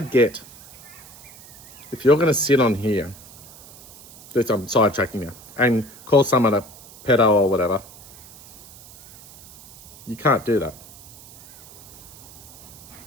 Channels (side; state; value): right; noise; hiss, 20 dB below the sound